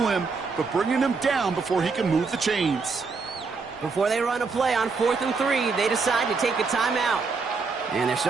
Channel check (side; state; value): left; quieter; 4.6 dB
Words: him, but bringing him down before he can move the chains. Before they run a play on 4th and 3, they decide to take a timeout. And they're